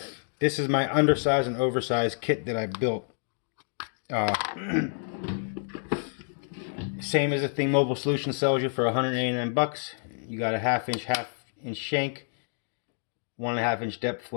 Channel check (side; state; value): right; silent; digital silence